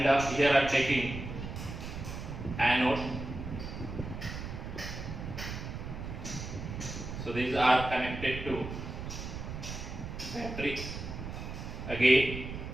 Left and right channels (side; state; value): right; noise; rumble, 7 dB below the sound